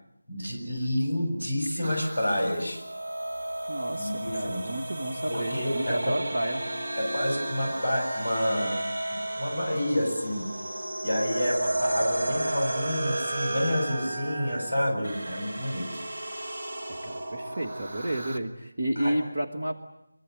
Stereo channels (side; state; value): both; inverted; correlation -0.95